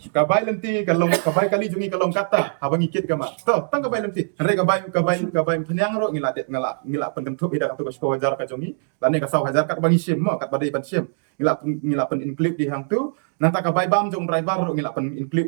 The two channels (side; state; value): left; silent; digital silence